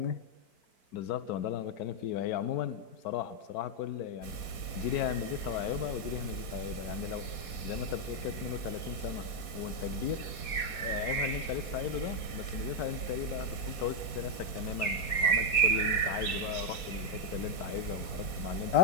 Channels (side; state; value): right; late; 4.2 ms